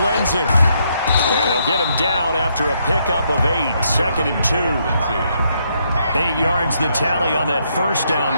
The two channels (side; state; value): both; inverted; correlation -0.75